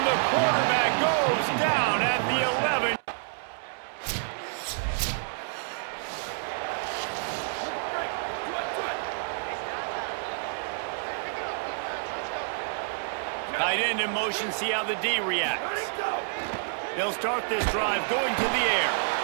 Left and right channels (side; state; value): left; silent; 59 dB below the other